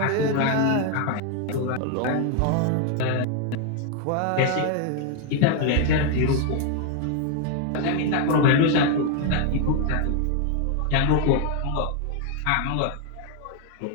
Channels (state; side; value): different; both; correlation 0.00